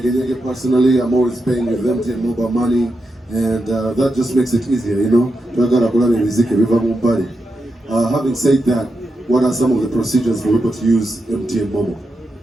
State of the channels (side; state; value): both; normal; correlation 0.86